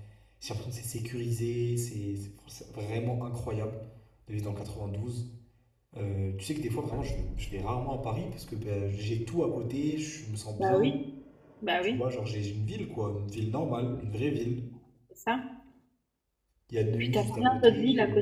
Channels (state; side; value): identical; both; correlation 1.00